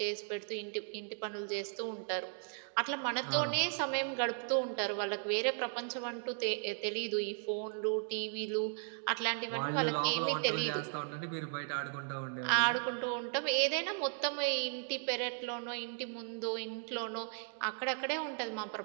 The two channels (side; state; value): left; silent; 54 dB below the other